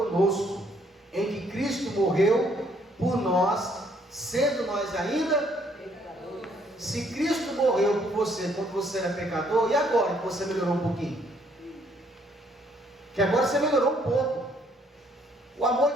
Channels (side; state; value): both; normal; correlation 0.67